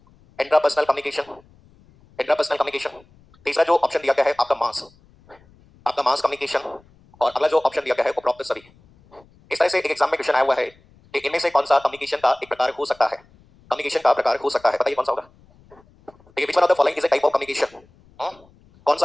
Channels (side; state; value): left; noise; rumble, 29 dB below the sound